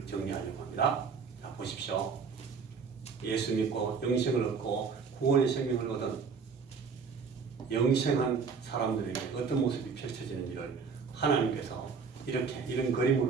정리하려고 합니다. 자, 보십시오. 예수 믿고 영생을 얻고 구원의 생명을 얻은 영생한 사람들에게 어떤 모습이 펼쳐지는지를 하나님께서 이런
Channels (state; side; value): quieter; left; 5.5 dB